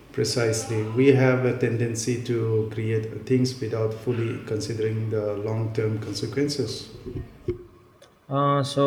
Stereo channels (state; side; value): identical; both; correlation 1.00